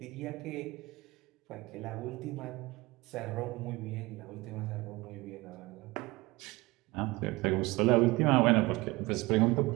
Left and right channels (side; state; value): left; quieter; 21.9 dB